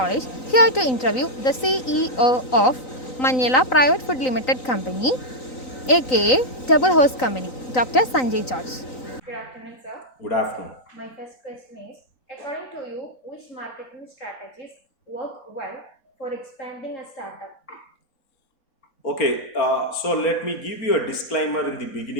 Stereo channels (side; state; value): right; late; 3.9 ms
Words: here to interview the CEO of Manila Private Food Limited Company, aka Double Host Company, Dr. Sanjay George. Good afternoon, sir. Good afternoon. My first question is, according to you, which marketing strategies work well for expanding a startup? Okay, so let me give you a disclaimer in the